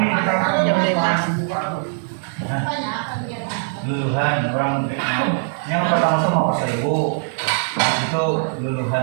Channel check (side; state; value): left; silent; 65 dB below the other